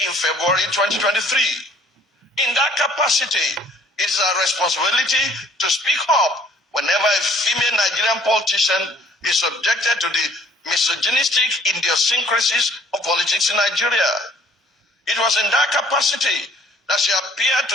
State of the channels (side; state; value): both; normal; correlation 0.59